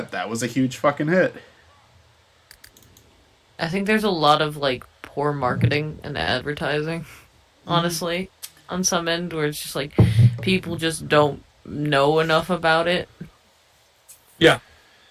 That was a huge fucking hit. I think there's a lot of, like, poor marketing and advertising, honestly, on some end, where it's just like people just don't know enough about it. Yeah.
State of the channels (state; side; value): identical; both; correlation 1.00